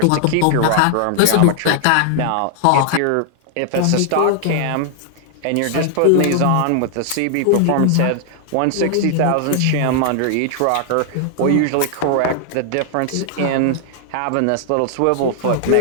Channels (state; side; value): different; both; correlation 0.00